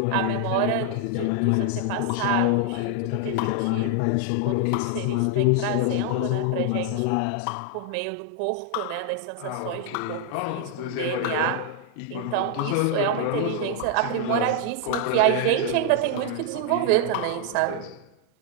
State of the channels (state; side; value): different; both; correlation 0.00